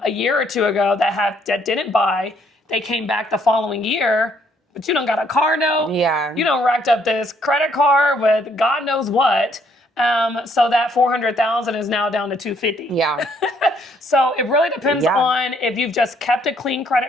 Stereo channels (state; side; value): normal; both; correlation 0.67